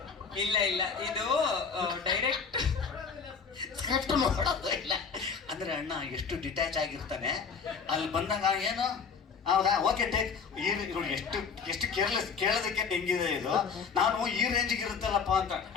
ಇಲ್ಲ ಇದು ಡೈರೆಕ್ಟ್ ಸ್ಕ್ರಿಪ್ಟ್ ನೋಡೋದು ಇಲ್ಲ. ಅಂದ್ರೆ ಅಣ್ಣ ಎಷ್ಟು ಡಿಟ್ಯಾಚ್ ಆಗಿರ್ತಾನೆ, ಅಲ್ಲಿ ಬಂದಾಗ ಏನು ಹೌದಾ ಓಕೆ ಟೇಕ್ ಎಷ್ಟು ಕೇರ್ಲೆಸ್ ಕೇಳೋದಕ್ಕೆ ಹೆಂಗಿದೆ ಇದು, ನಾನು ಈ ರೇಂಜಿಗೆ ಇರುತ್ತಲ್ಲಪ್ಪ ಅಂತ.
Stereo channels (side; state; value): right; quieter; 5.8 dB